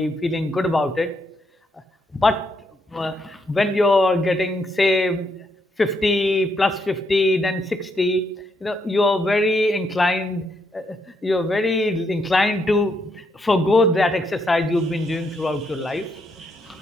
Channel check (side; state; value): both; normal; correlation 0.77